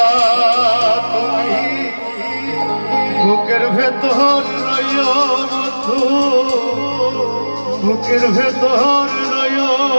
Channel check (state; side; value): inverted; both; correlation -1.00